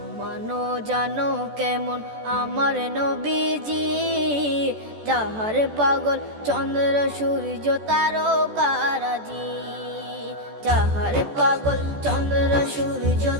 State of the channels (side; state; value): left; late; 14 ms